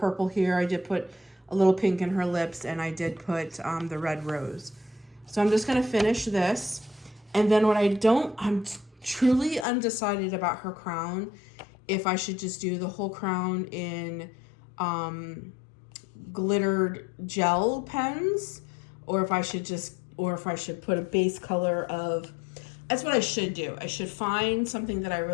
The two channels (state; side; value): drops out; right; at 9.7 s